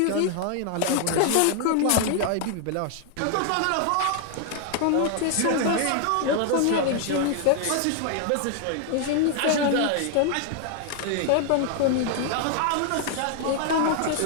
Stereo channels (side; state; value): both; different; correlation 0.00